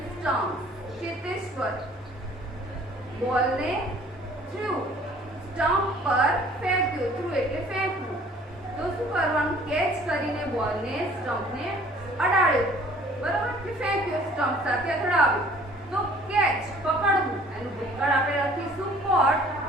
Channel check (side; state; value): both; normal; correlation 0.54